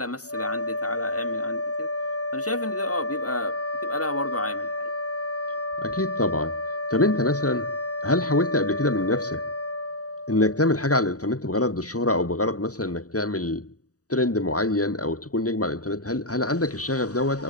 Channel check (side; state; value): right; late; 0.67 ms